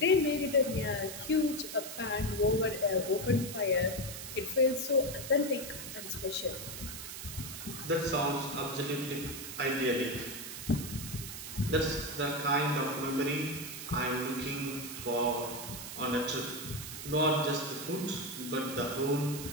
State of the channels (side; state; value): right; noise; hiss, 9 dB below the sound